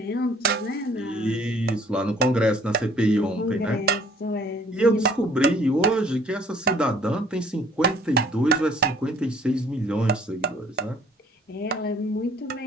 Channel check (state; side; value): normal; both; correlation 0.57